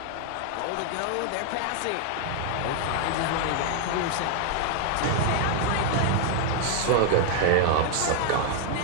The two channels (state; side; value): different; both; correlation 0.00